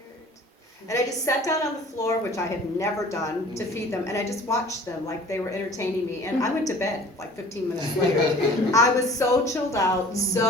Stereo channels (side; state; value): both; normal; correlation 0.47